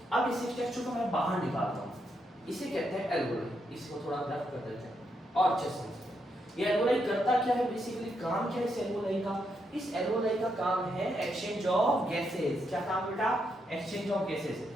अब इस स्ट्रक्चर को मैं बाहर निकालता हूँ, इसे कहते हैं एल्वोलाई। इसको थोड़ा ग्राफ कर देते हैं और अच्छे से। ये एल्वोलाई करता क्या है, बेसिकली काम क्या है इस एल्वोलाई का, इस एल्वोलाई का काम है एक्सचेंज ऑफ गैसेस। क्या काम बेटा, एक्सचेंज ऑफ गैसेस।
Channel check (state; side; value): normal; both; correlation 0.80